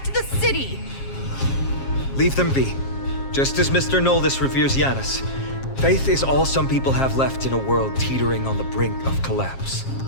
the city! Leave them be. Just as Mr. Noldis reveres Janus, faith is all some people have left in a world teetering on the brink of collapse.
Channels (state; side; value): late; right; 7.4 ms